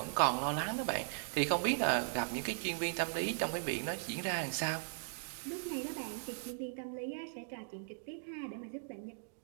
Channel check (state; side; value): silent; left; digital silence